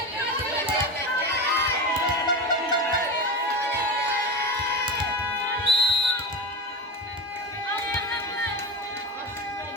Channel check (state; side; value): normal; both; correlation 0.21